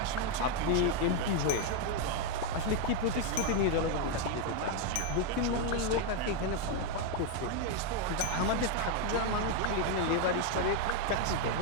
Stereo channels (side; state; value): both; different; correlation 0.01